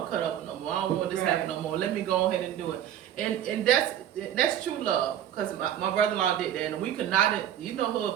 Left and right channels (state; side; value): quieter; left; 10.7 dB